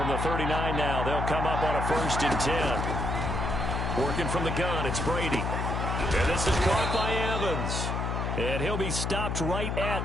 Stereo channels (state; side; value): noise; left; hum, 1 dB below the sound